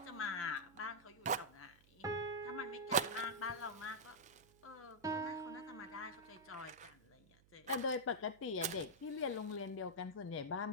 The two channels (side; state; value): right; noise; hum, 27 dB below the sound